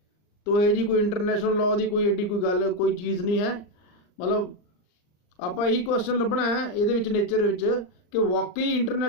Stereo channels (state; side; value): late; right; 39 ms